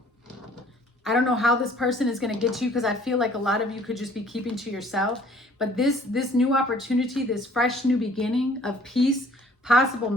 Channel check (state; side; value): normal; both; correlation 0.56